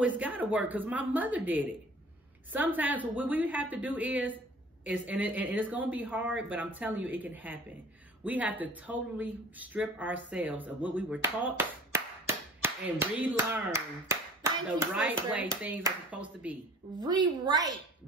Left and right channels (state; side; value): normal; both; correlation 0.47